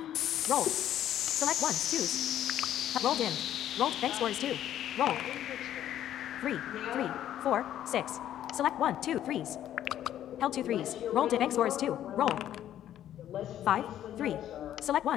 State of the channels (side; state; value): right; quieter; 11.4 dB